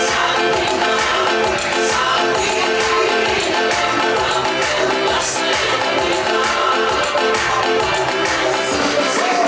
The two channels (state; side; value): identical; both; correlation 1.00